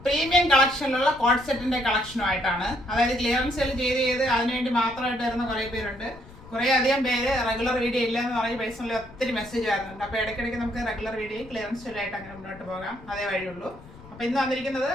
പ്രീമിയം കളക്ഷനിലുള്ള കോഡ് സെറ്റിന്റെ കളക്ഷനുമായിട്ടാണ്. അതായത് ക്ലിയറൻസ് സെയിൽ ചെയ്ത് അതിനുവേണ്ടി മാത്രമായിട്ട് വരുന്ന കുറേ പേരുണ്ട്. കുറേ അധികം പേര് റെഗുലർ വീഡിയോ ഇല്ല എന്ന് പറഞ്ഞ് പേഴ്സണലി ഒത്തിരി മെസ്സേജ് വരുന്നുണ്ട്. അപ്പോൾ ഇടയ്ക്കിടയ്ക്ക് നമുക്ക് റെഗുലർ വീഡിയോ ക്ലിയറൻസ് സെയിലായിട്ട് അങ്ങനെ മുന്നോട്ട് പോകാം, അതേ വഴിയുള്ളൂ. അപ്പോൾ ഇന്ന് വന്നിരിക്കുന്നത്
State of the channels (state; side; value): noise; left; rumble, 20 dB below the sound